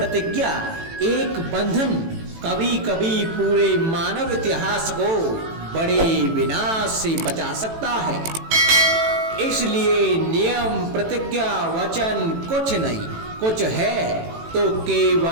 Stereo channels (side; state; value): left; late; 18 ms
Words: एक बंधन कभी कभी पूरे मानव इतिहास को बड़े विनाश से बचा सकता है। इसलिए नियम, प्रतिज्ञा, वचन कुछ नहीं, कुछ है तो